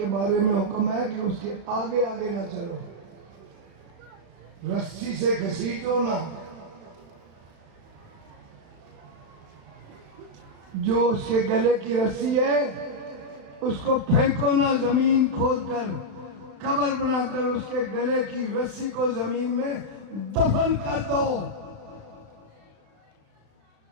بارے میں حکم ہے کہ اس کے آگے آگے نہ چلو، رسی سے گھسیٹو نہ، جو اس کے گلے کی رسی ہے اس کو پھینکو نہ، زمین کھود کر قبر بنا کر اس کے گلے کی رسی کو زمین میں دفن کر دو.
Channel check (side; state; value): left; late; 36 ms